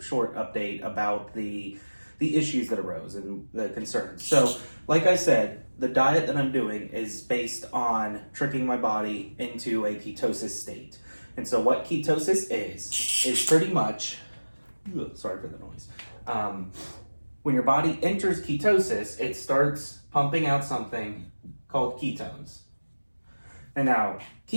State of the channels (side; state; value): both; inverted; correlation -1.00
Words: update about the issues that arose and the concerns. So, like I said, the diet that I'm doing is based on tricking my body into a ketosis state. And so what ketosis is pretty much, sorry for the noise. When your body enters ketosis, it starts pumping out something called ketones. And now,